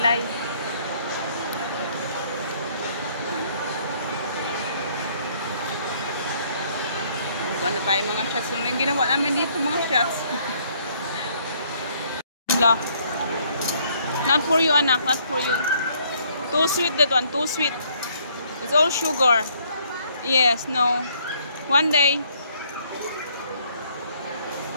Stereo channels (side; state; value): both; inverted; correlation -0.65